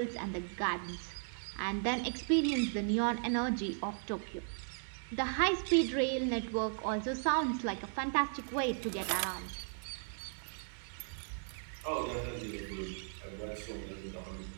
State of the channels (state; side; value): silent; left; digital silence